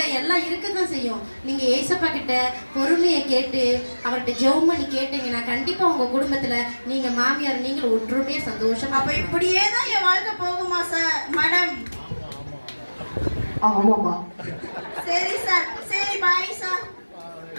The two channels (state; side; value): inverted; both; correlation -1.00